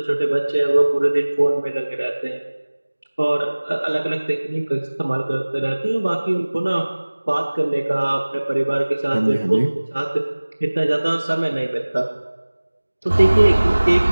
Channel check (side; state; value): both; inverted; correlation -1.00